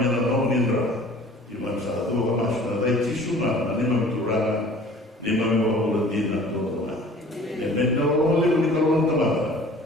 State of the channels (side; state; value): both; normal; correlation 0.48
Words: yang nak nindra, kimam satu apa masuk, ada tisu mana, ni mana turun, ni mana bawa dina turun. Yang mana orang boleh beri kalau orang teman.